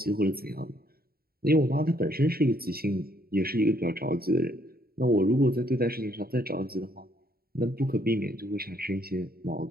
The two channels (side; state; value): left; late; 0.44 ms